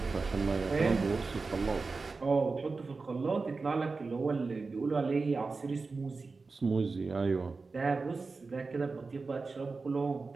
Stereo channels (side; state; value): left; quieter; 4.1 dB